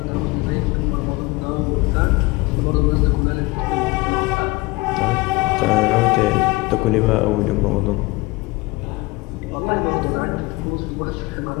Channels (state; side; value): quieter; right; 22.8 dB